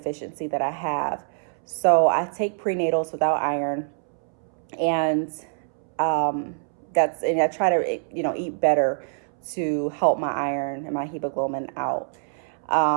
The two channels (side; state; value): left; silent; 62 dB below the other